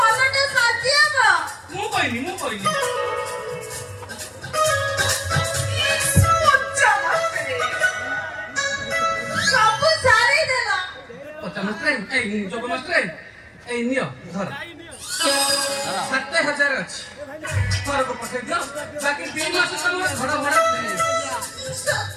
ମୁଁ କହିଲି ସବୁ ସାରି ଦେଲା। ଯୋଗ ମାଷ୍ଟ୍ରେ ଏଇ ନିଅ ଧର 7,000 ଅଛି ଘରକୁ ପଠେଇ ଦିଅ ବାକି 2 ମାସ ତମର ଘର ଭଡ଼ା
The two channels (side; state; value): both; identical; correlation 1.00